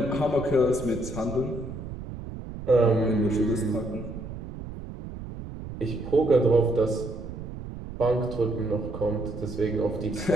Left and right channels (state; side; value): noise; right; rumble, 10 dB below the sound